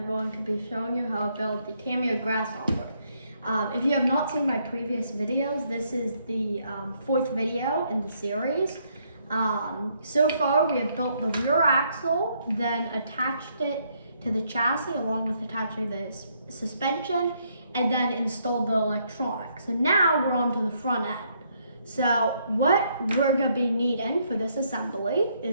going to be showing you how to build the Tamiya Grasshopper. If you have not seen my previous videos, this is the fourth video in the series. So far, we have built the rear axle, then attached it to the chassis along with attaching the suspension, and then installed the electronics. So now we're on to the front end. So what we're going to be needing for this assembly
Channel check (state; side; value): inverted; both; correlation -0.72